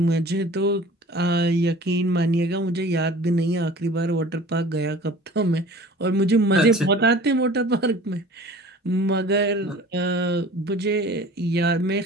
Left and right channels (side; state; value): both; normal; correlation 0.44